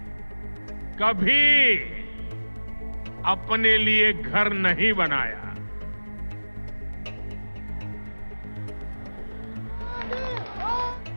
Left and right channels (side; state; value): both; inverted; correlation -1.00